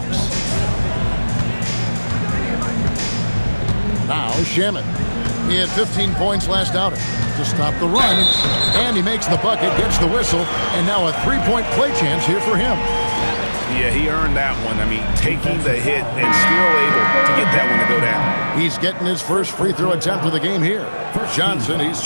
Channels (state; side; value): inverted; both; correlation -1.00